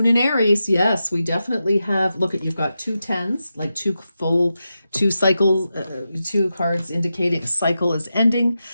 in Aries. Yes, we definitely have. Look at, you've got 2 tens, like 2 cycles, 2 cards indicating a cycle is ending.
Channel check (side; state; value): both; inverted; correlation -0.90